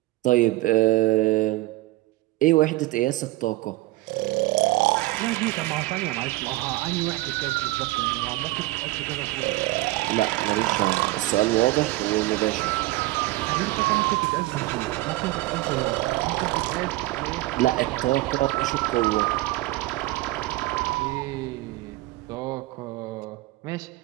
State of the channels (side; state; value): left; quieter; 19.1 dB